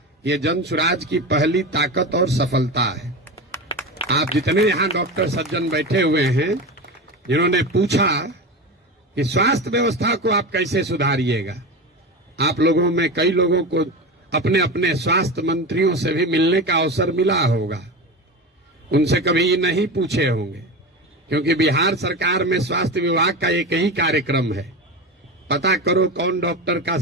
ये जनसुराज की पहली ताकत और सफलता है। आप जितने यहाँ डॉक्टर सज्जन बैठे हुए हैं, जिन्होंने पूछा कि स्वास्थ्य व्यवस्था को आप कैसे सुधारिएगा, आप लोगों में कई लोगों को अपने अपने स्वास्थ्य मंत्रियों से भी मिलने का अवसर मिला होगा। उनसे कभी नहीं पूछे होंगे, क्योंकि बिहार सरकार में स्वास्थ्य विभाग का एक ही कार्यक्रम है, पता करो कौन डॉक्टर का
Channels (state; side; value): normal; both; correlation 0.24